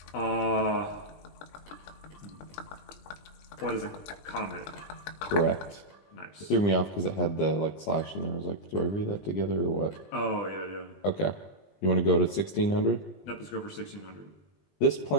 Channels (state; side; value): late; right; 20 ms